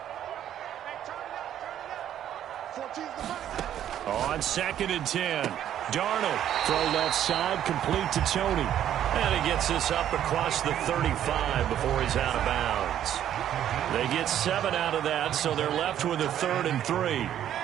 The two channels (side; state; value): left; quieter; 10.8 dB